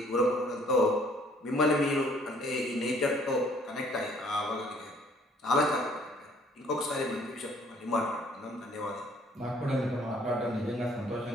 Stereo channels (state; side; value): normal; both; correlation 0.59